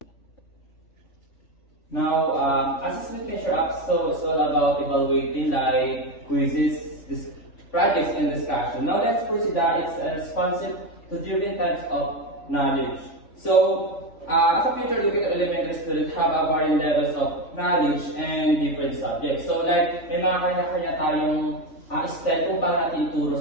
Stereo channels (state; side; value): late; right; 3.5 ms